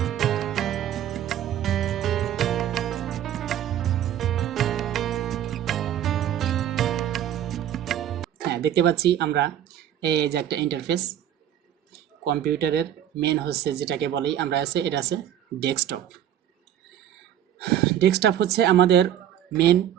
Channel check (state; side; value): quieter; left; 10.8 dB